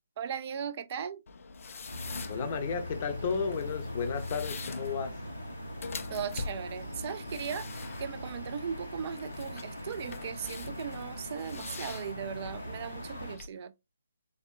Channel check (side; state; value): both; inverted; correlation -0.63